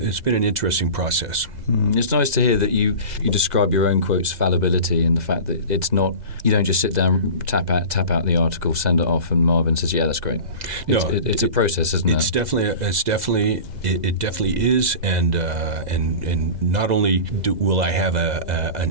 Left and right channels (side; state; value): left; late; 2.0 ms